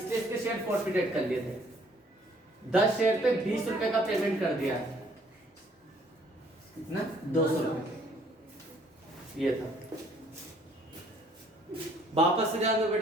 इसके शेयर फॉरफिटेड कर लिए थे, 10 शेयर पे 20 रुपए का पेमेंट कर दिया, कितना 200 रुपए ये था। वापस से जाओ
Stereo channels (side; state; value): both; normal; correlation 0.61